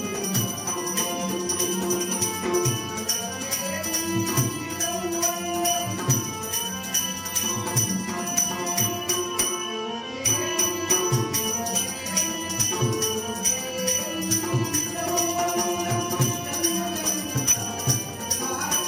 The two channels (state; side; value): identical; both; correlation 1.00